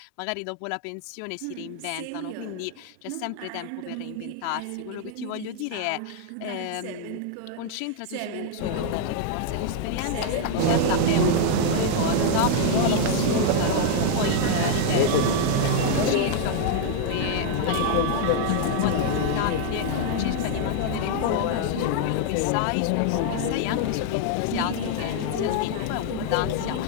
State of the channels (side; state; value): both; different; correlation 0.00